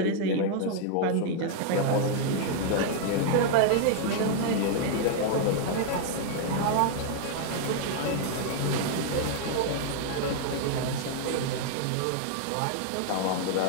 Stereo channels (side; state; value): both; different; correlation -0.01